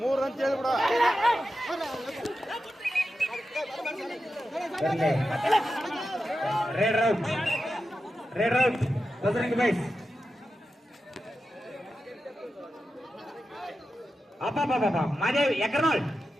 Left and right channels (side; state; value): both; normal; correlation 0.90